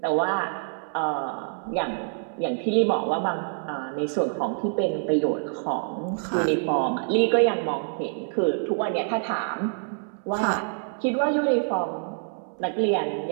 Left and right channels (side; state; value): left; silent; 61 dB below the other